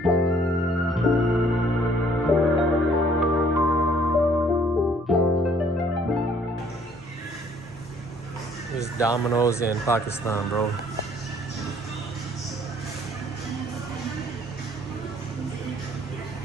There's Domino's in Pakistan, bro.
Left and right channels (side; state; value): both; normal; correlation 0.60